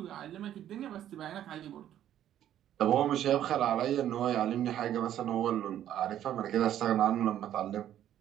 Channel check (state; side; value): quieter; left; 11.3 dB